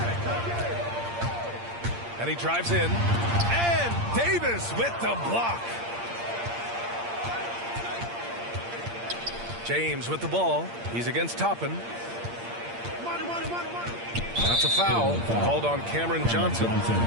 And he drives in. And Davis with the block. James with the ball. He's against Toppin. That's a foul called on Cameron Johnson.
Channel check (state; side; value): late; left; 8.7 ms